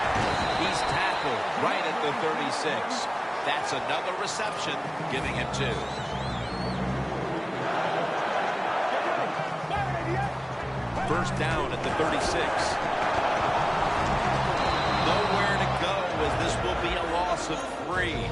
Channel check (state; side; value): identical; both; correlation 1.00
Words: He's tackled right at the 36. That's another reception, giving him 2. First down at the 36. Nowhere to go as this will be a loss of 3.